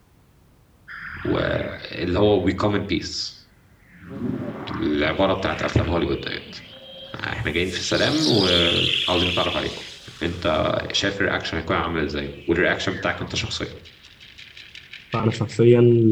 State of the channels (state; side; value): identical; both; correlation 1.00